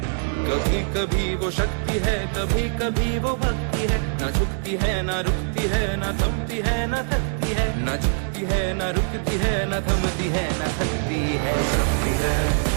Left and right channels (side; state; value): left; silent; digital silence